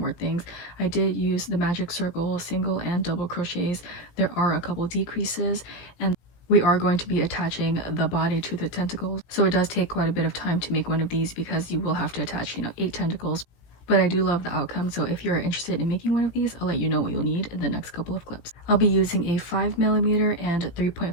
things. I did use the magic circle single and double crochets. There are a couple decreases, and we are going to be attaching the body to the tentacles, so it does take quite a bit of time to make one of these because you will have to attach, you know, 8 tentacles. But I do love the outcome, so if you're interested in making one of these, I'll let you know what you'll need in the next couple of clips. I'll be using a 5mm and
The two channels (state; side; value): late; right; 17 ms